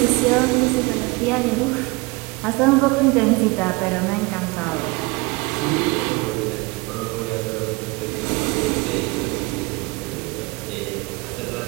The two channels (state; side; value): quieter; left; 25.3 dB